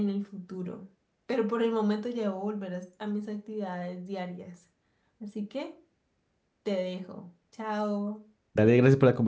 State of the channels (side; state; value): both; identical; correlation 1.00